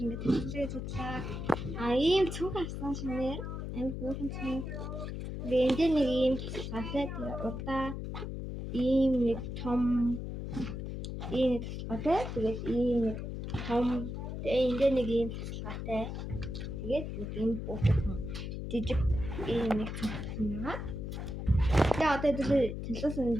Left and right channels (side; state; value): left; noise; hum, 5 dB below the sound